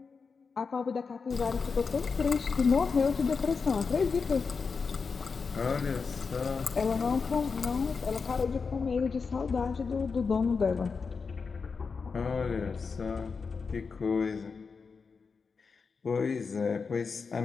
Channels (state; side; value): quieter; right; 5.1 dB